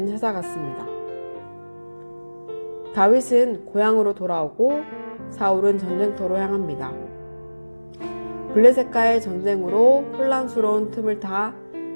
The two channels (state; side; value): inverted; both; correlation -1.00